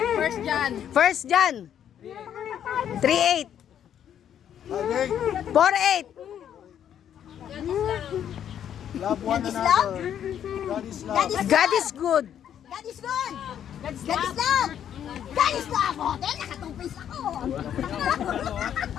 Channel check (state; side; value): quieter; right; 9.6 dB